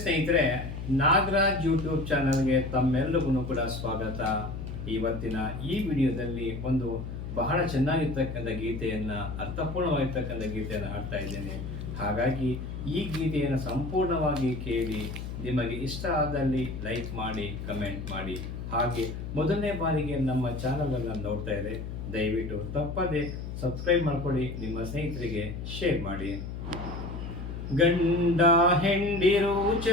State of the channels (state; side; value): noise; left; hum, 7 dB below the sound